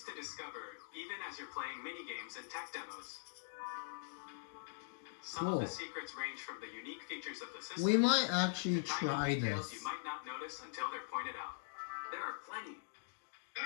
to discover, even as you're playing mini-games and tech demos. Some of the secrets range from the unique features of the system. We might actually to try tiny details this. you might not notice until they're pointed out. There are plenty.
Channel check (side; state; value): right; silent; digital silence